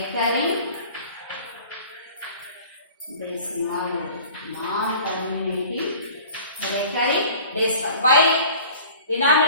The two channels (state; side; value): inverted; both; correlation -0.46